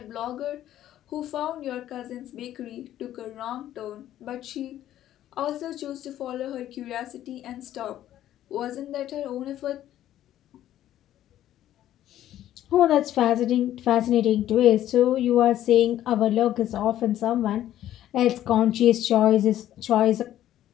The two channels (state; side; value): quieter; right; 12.4 dB